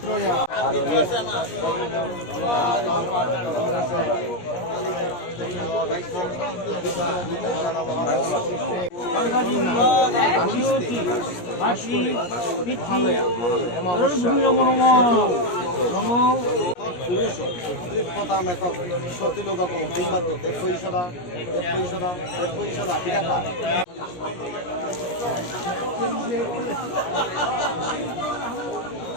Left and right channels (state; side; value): late; right; 17 ms